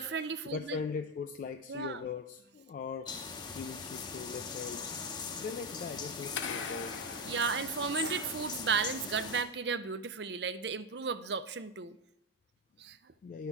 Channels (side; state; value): both; normal; correlation 0.08